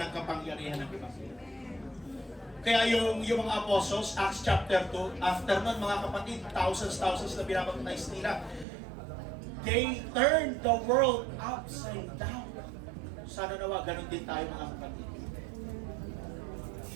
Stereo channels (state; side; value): drops out; left; at 8.7 s